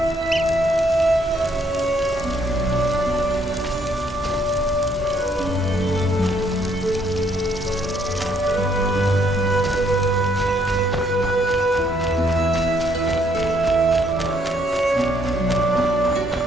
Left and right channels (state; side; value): normal; both; correlation 0.69